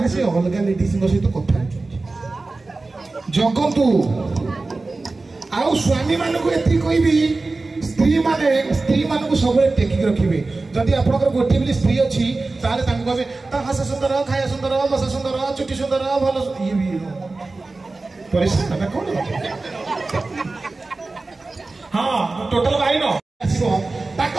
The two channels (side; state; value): left; quieter; 3.5 dB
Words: ସେ ଅଲଗା ଲେଡିଜଙ୍କ ସହିତ କଥା ହଉଛନ୍ତି। ଜଗନ୍ତୁ ଆଉ ସ୍ୱାମୀ ମାନଙ୍କୁ ଏତିକି କହିବି, ସ୍ତ୍ରୀ ମାନଙ୍କୁ ସବୁବେଳେ ଟେକିକି ରଖିବେ। ଯଦି ଆପଣଙ୍କର ଗୋଟିଏ ବୋଲି ସ୍ତ୍ରୀ ଅଛି ତାହେଲେ ତାଙ୍କୁ କହିବେ ତା ହସ ସୁନ୍ଦର, ଖାଇବା ସୁନ୍ଦର, ବସା ସୁନ୍ଦର, ଚୁଟି ସୁନ୍ଦର, ଭଲ ଇଏ ବି ପରିଷ୍କାର କଣ? ହଁ ଟୋଟାଲ ବାଇନ ଆସିବ